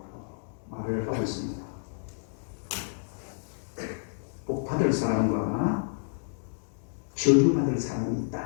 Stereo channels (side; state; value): right; silent; digital silence